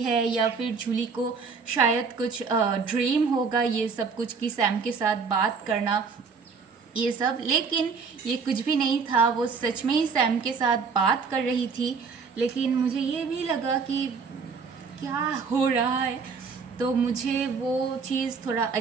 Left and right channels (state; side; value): quieter; left; 5.2 dB